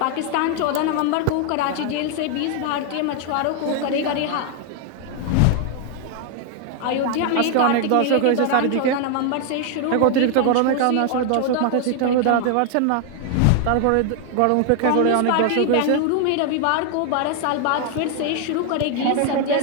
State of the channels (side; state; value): both; different; correlation 0.00